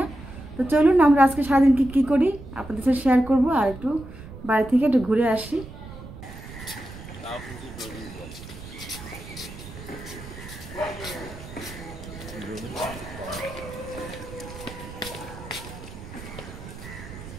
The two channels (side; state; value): right; noise; rumble, 14 dB below the sound